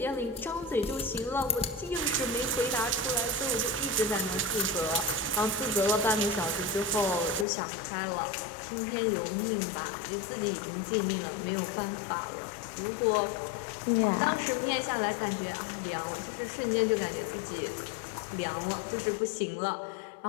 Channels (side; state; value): right; drops out; at 7.5 s